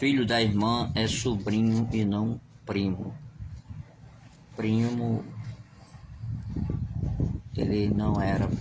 da irmã é sobrinho e não primo. Primo, ele não era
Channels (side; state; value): both; identical; correlation 1.00